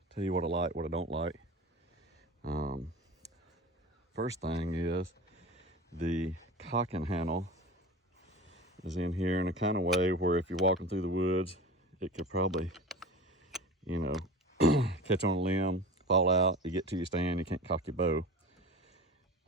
tell you what I like, what I don't like. First thing is the cocking handle is in here in a kind of way where if you're walking through the woods, it could probably, you know, catch on a limb, fall out, you get to your stand, you can't cock your bow.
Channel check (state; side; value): normal; both; correlation 0.33